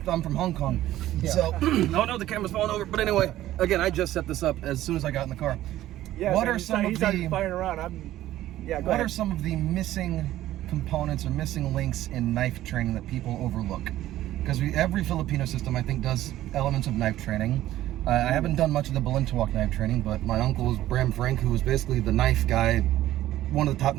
I'm from Hong Kong. Yeah. So, oh no, the camera's falling over. But anyway, again, I just set this up as soon as I got in the car. Yeah. What are some of the firing around? What are some of the missing components or missing links in knife training that people overlook? Because every Filipino system, I think, does elements of knife training. I haven't done much of the Belinta Walk knife training, but my uncle is Bram Frank, who was basically the knife guy, one of the top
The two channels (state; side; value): quieter; left; 14.1 dB